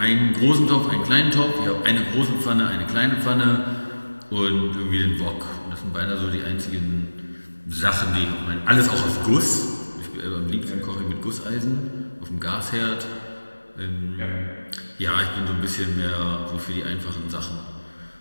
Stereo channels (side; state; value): both; inverted; correlation -1.00